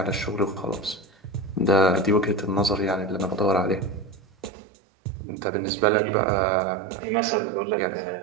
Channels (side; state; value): left; drops out; at 4.5 s